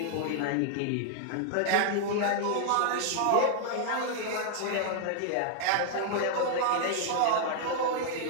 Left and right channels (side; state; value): both; different; correlation -0.01